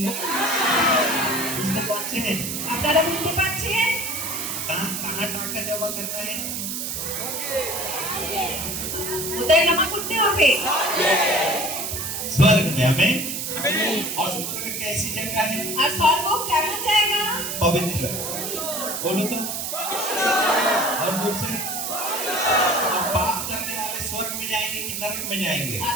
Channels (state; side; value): noise; right; hiss, 3 dB below the sound